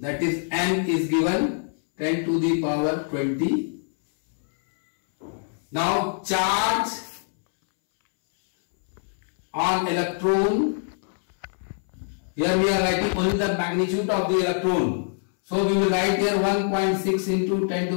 is N is given 10 to the power 20. Now charge on electron, here we are writing only the magnitude of the electron. So we will write here 1.6 into 10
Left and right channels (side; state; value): right; silent; 62 dB below the other